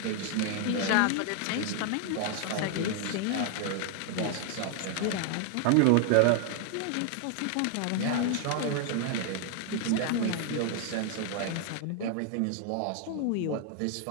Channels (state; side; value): different; both; correlation 0.00